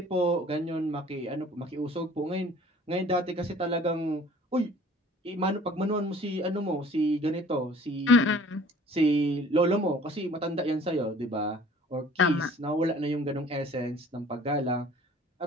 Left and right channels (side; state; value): both; normal; correlation 0.51